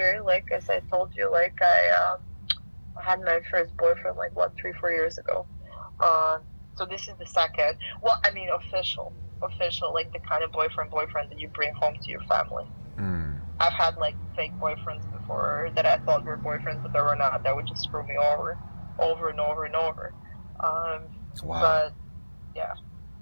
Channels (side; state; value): both; inverted; correlation -1.00